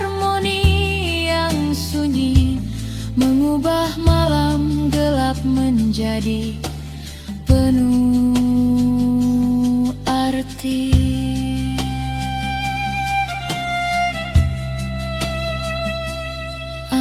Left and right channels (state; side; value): identical; both; correlation 1.00